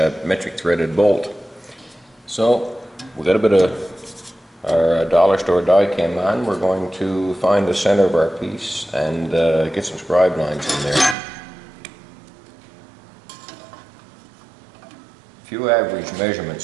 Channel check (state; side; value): drops out; left; at 11.2 s